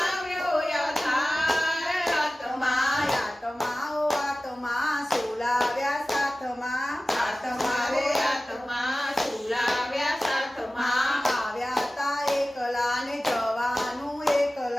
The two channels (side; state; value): both; normal; correlation 0.97